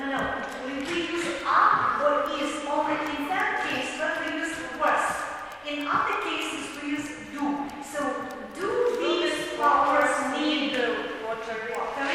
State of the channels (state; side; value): identical; both; correlation 1.00